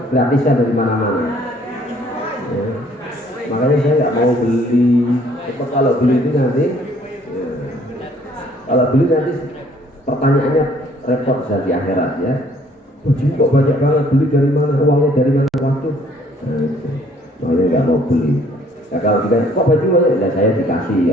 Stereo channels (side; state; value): both; normal; correlation 0.60